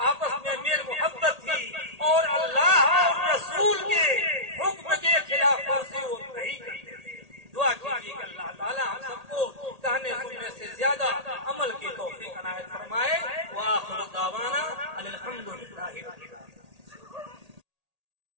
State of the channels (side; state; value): left; late; 1.8 ms